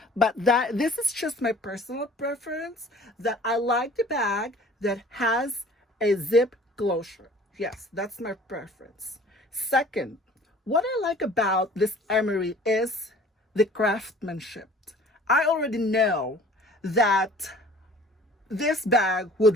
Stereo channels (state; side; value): normal; both; correlation 0.49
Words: But this is just my personal preference, that I like the bag that has a zip closure. Yes, that's my preference. Second, what I like about this Emery is the craftsmanship. I already know that this bag